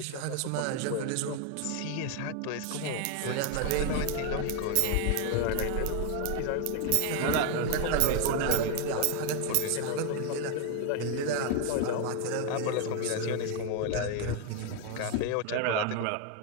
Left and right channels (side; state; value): both; different; correlation 0.01